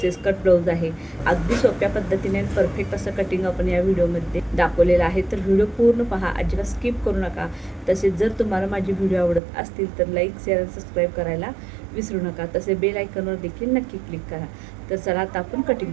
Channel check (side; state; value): left; drops out; at 9.4 s